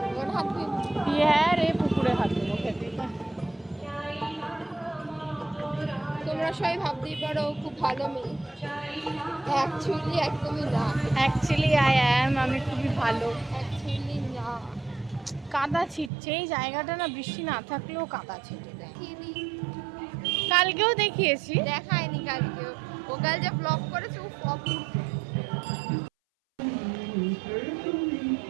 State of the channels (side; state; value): left; drops out; at 16.1 s